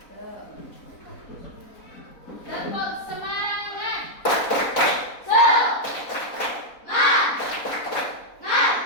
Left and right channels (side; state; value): right; late; 4.1 ms